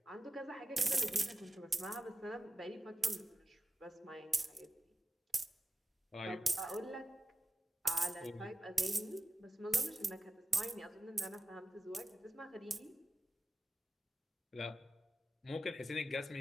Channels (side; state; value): both; normal; correlation 0.93